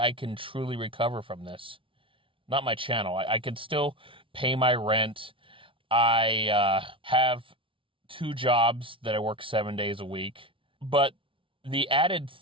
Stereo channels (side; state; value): left; late; 0.25 ms